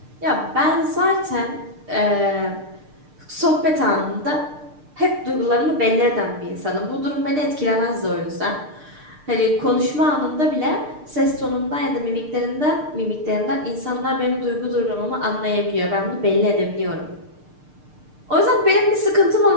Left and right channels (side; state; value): left; late; 6.6 ms